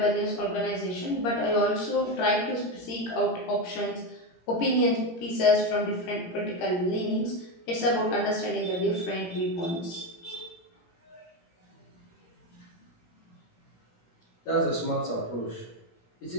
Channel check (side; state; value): right; late; 17 ms